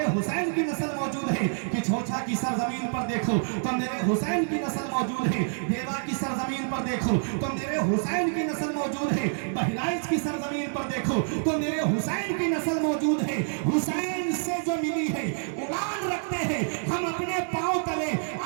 हुसैन की नस्ल मौजूद है। कि छोछा की सरजमीन पर देखो तो मेरे हुसैन की नस्ल मौजूद है। देवा की सरजमीन पर देखो तो मेरे हुसैन की नस्ल मौजूद है। बहराइच की सरजमीन पर देखो तो मेरे हुसैन की नस्ल मौजूद है। हुसैन से जो मिली है उड़ान रखते हैं हम, अपने पांव तले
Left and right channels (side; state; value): left; silent; 60 dB below the other